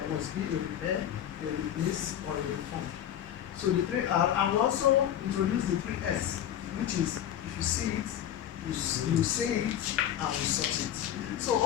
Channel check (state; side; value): quieter; right; 10.7 dB